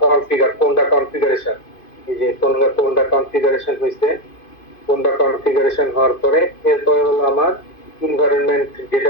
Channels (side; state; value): right; late; 2.5 ms